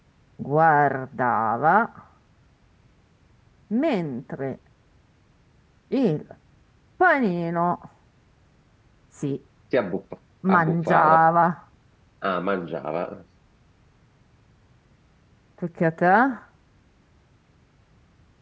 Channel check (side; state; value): both; identical; correlation 1.00